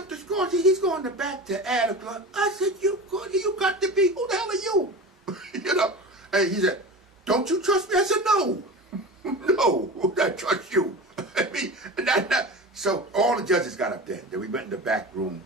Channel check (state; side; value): normal; both; correlation 0.31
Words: the scores, he's going to back to add a club. I said, you got to be, who the hell are you? You know, and he said, don't you trust me? I said, no. No, I trust you. I mean, so all the judges got up there. Then we went in the back room,